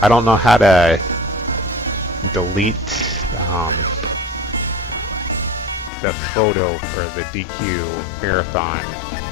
I don't know how to delete the photo for the DQ Marathon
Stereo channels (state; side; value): drops out; right; at 5.9 s